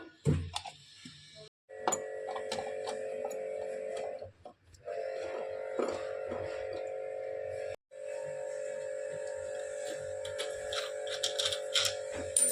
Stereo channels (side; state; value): both; identical; correlation 1.00